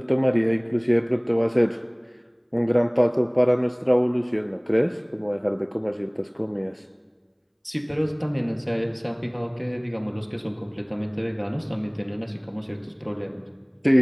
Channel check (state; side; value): identical; both; correlation 1.00